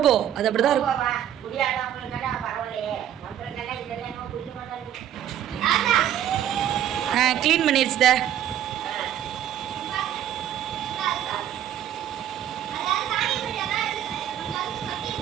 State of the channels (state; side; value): quieter; left; 10.7 dB